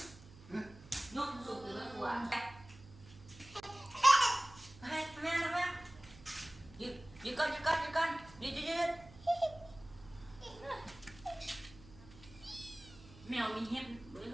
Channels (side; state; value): right; noise; hum, 20 dB below the sound